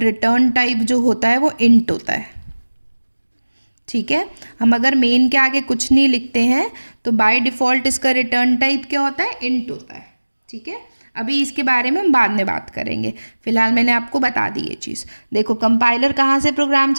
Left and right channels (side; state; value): both; inverted; correlation -1.00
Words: टाइप जो होता है वो इंट होता है। ठीक है, हम अगर मेन के आगे कुछ नहीं लिखते हैं तो बाय डिफ़ॉल्ट इसका रिटर्न टाइप क्या होता है, इंट होता है। ठीक है, अभी इसके बारे में हम बाद में बात करेंगे, फिलहाल मैंने आपको बता दी ये चीज़। देखो कंपाइलर कहाँ से प्रोग्राम